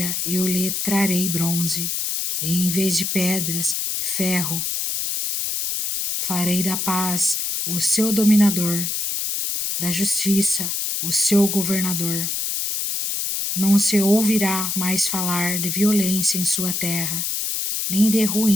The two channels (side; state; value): left; noise; hiss, 1 dB below the sound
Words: eu lhe trarei bronze, e em vez de pedras, ferro. Farei da paz o seu dominador, da justiça o seu governador. Não se ouvirá mais falar de violência em sua terra, nem de